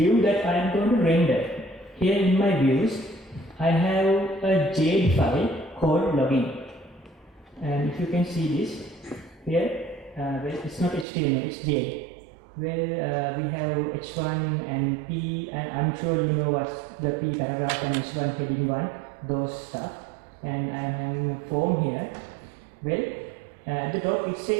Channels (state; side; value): drops out; left; at 11.1 s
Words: that I am going to render. Here in my views, I have a JD file called login. And if you can see this, here, well, it's not HTML, it's JD. Well, we have H1 and P, and I'm sure you know what's the P paragraph and H1 heading 1, those stuff. And I'm having a form here. Well, at the top it